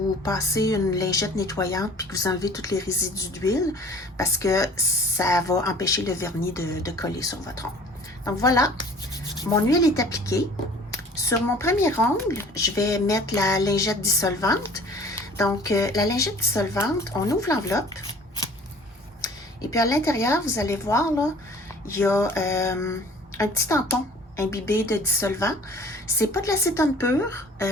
passez une lingette nettoyante puis que vous enlevez tous les résidus d'huile parce que ça va empêcher le vernis de coller sur votre ongle. Donc voilà, mon huile est appliquée. Sur mon premier ongle, je vais mettre la lingette dissolvante. Donc, la lingette dissolvante, on ouvre l'enveloppe. Et puis à l'intérieur, vous allez voir, là, il y a un petit tampon imbibé de dissolvant. C'est pas de l'acétone pur,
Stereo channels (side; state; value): both; normal; correlation 0.48